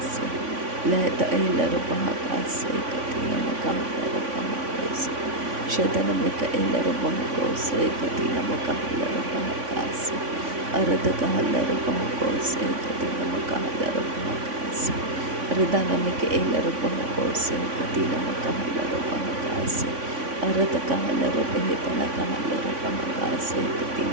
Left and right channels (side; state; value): left; late; 3.5 ms